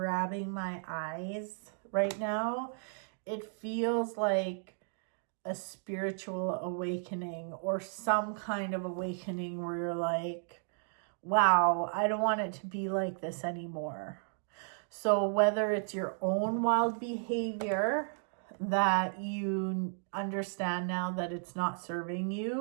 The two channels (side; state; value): left; silent; digital silence